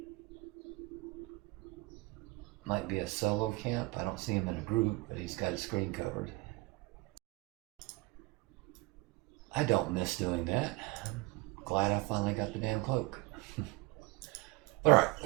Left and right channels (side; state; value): left; quieter; 21.4 dB